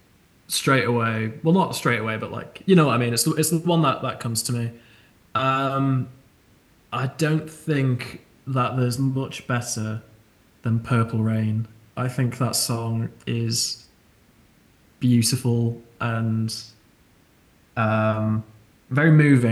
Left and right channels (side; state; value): both; identical; correlation 1.00